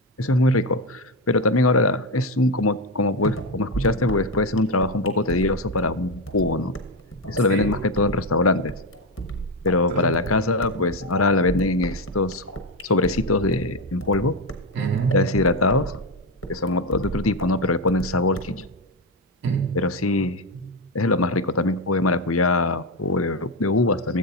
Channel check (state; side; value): normal; both; correlation 0.11